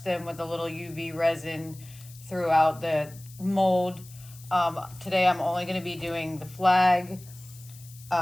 them with a little UV resin throughout the mold. Today I'm only going to be doing the flag.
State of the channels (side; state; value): left; noise; hiss, 21 dB below the sound